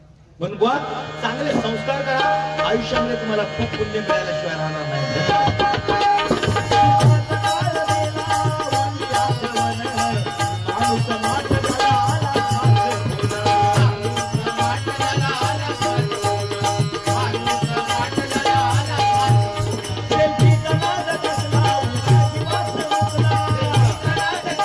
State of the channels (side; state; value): both; identical; correlation 1.00